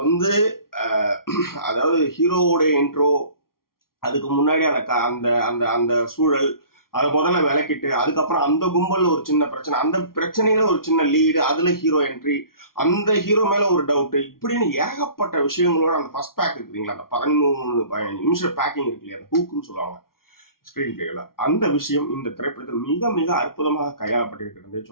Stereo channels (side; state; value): right; late; 0.93 ms